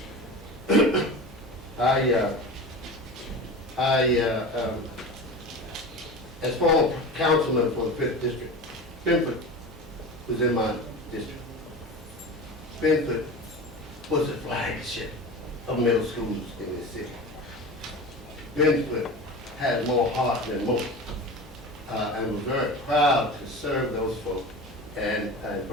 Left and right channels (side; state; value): both; normal; correlation 0.31